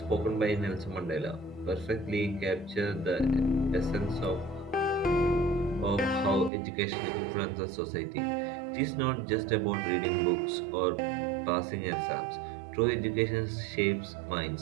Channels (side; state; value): left; drops out; at 6.5 s